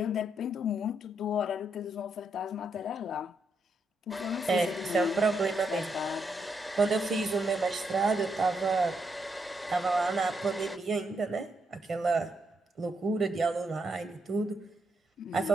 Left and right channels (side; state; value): both; normal; correlation 0.79